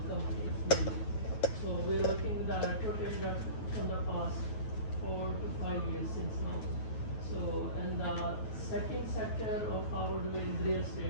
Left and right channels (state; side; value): late; right; 9.3 ms